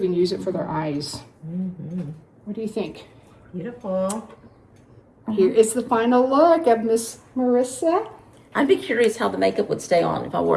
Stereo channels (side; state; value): both; identical; correlation 1.00